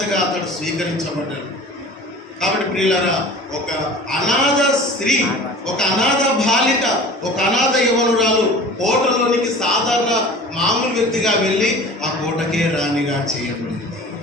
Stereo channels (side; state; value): both; normal; correlation 0.41